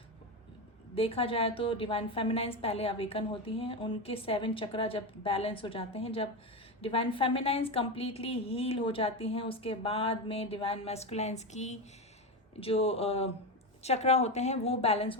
देखा जाए तो डिवाइन फेमिनाइंस पहले अवेकन होती हैं, उनके 7 चक्रा जब बैलेंस हो जाते हैं, जब डिवाइन फेमिनाइंस कंप्लीटली हील हो जाती हैं, उसके बाद में डिवाइन मैस्कुलाइंस की जो चक्रा होते हैं वो बैलेंस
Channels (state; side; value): normal; both; correlation 0.16